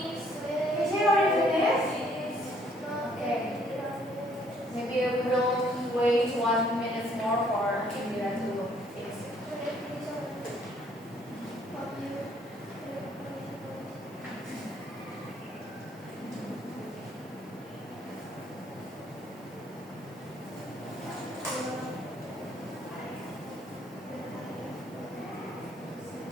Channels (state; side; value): noise; right; hiss, 27 dB below the sound